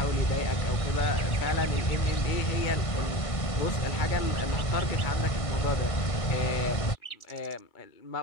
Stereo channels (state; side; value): late; right; 1.5 ms